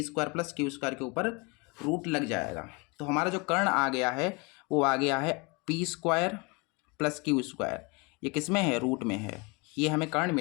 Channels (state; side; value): quieter; right; 28.6 dB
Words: square plus Q square के ऊपर रूट लग जाएगा। तो हमारा जो कर्ण आ गया है वो आ गया है P square plus Q square, ये किस में है, रूट में है। ये हमें कर्ण